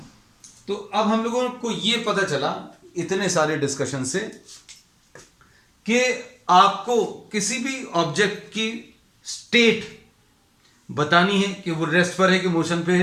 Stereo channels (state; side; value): identical; both; correlation 1.00